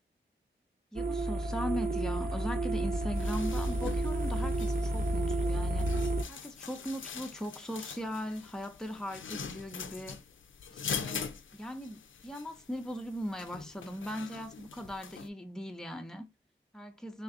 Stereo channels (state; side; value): normal; both; correlation 0.79